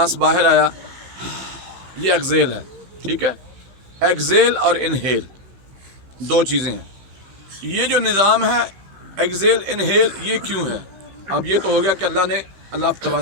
बाहर आया, ये एक्सेल है। ठीक है, एक्सेल और इनहेल दो चीज़ें हैं। ये जो निज़ाम है एक्सेल इनहेल, ये क्यों है? अब ये तो हो गया कि अल्लाह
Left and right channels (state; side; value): late; left; 16 ms